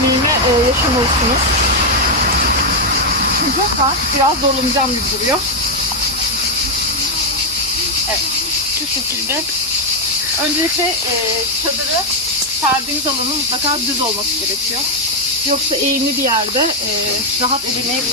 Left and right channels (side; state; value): both; normal; correlation 0.01